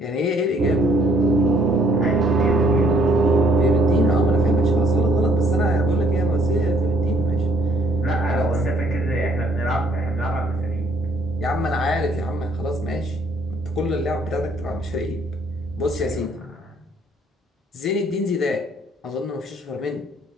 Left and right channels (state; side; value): normal; both; correlation 0.64